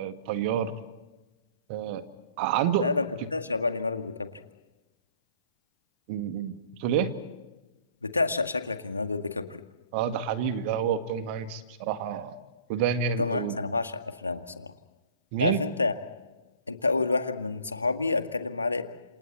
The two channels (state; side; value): inverted; both; correlation -0.50